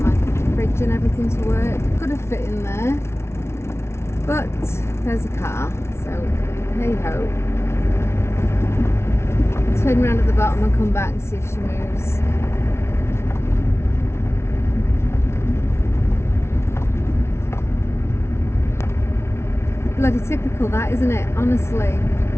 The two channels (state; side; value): late; right; 0.13 ms